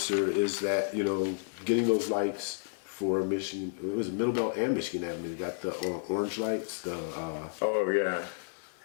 is that, you know, getting those lights for Michigan. It was Middlebelt and Michigan Avenue. You got the orange lights. Oh yeah.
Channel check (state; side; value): silent; right; 57 dB below the other